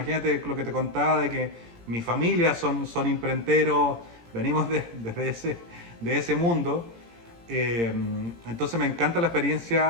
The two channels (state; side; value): late; left; 17 ms